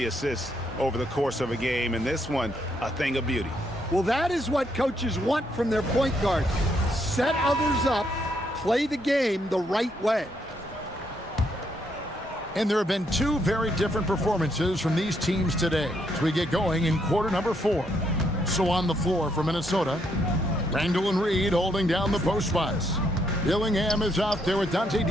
assists over the course of a game. And this one, a thing of beauty. Well, that is what coaches want from their point guard. Set others up, play the game the right way. And there have been 2 very different performances from these teams today as we get going in quarter number 4. So on the floor for Minnesota, Randall and Reed holding down the post spots. Dillingham is out there with Dante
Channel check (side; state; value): both; normal; correlation 0.74